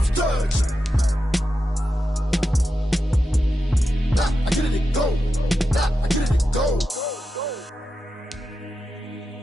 touched. Now I get it and go. Now I get it and go.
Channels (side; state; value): both; normal; correlation 0.89